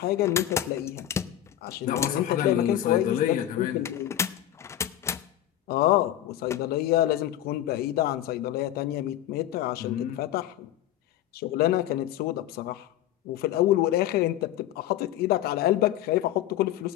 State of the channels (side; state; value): right; quieter; 12.5 dB